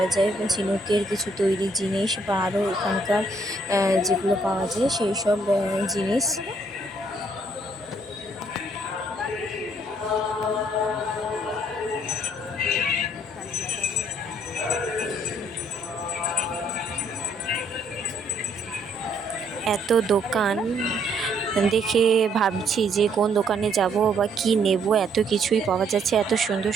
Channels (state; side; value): normal; both; correlation 0.67